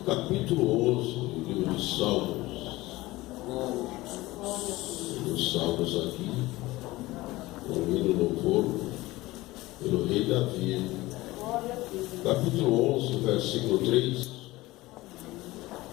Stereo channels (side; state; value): right; quieter; 19.2 dB